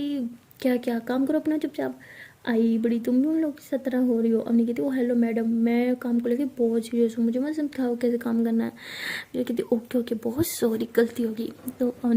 क्या क्या काम करो अपना चुपचाप, आई बड़ी तुम भी उन लोग की तरह हो रही हो। अम्मी कहती ओ हेलो मैडम, मैं काम को लेके बहुत सीरियस हूँ, मुझे मत समझाओ कैसे काम करना है। मेरी कहती ओके ओके बहुत सॉरी गलती होगी। तो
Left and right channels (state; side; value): identical; both; correlation 1.00